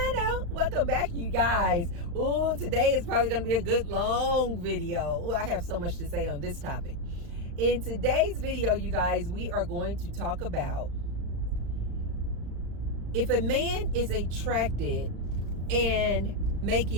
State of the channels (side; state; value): left; late; 35 ms